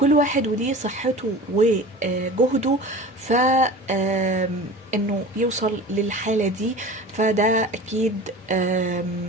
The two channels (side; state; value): both; normal; correlation 0.37